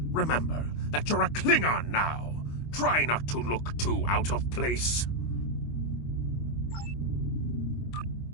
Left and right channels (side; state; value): right; late; 25 ms